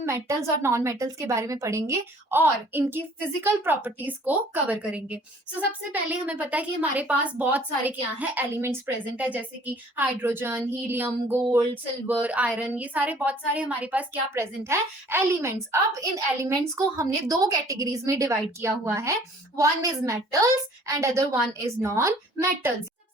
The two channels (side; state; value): both; normal; correlation 0.54